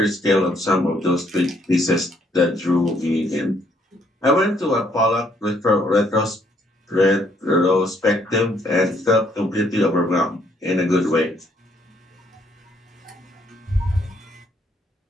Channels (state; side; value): normal; both; correlation 0.69